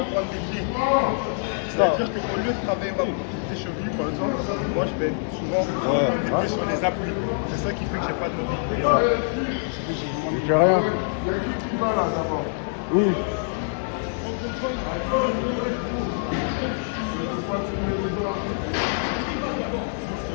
des pieds. C'est-à-dire qu'au lieu de travailler ma mobilité cheville, par exemple, moi je vais souvent des pieds sur les appuis. C'est ça qui fait que j'ai pas de mobilité. Il fait rien. Oui.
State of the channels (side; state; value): right; silent; 61 dB below the other